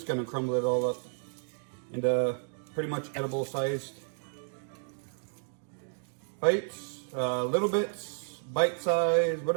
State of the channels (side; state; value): left; silent; digital silence